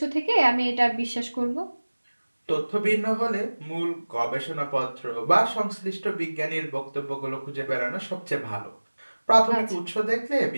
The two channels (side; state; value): both; inverted; correlation -1.00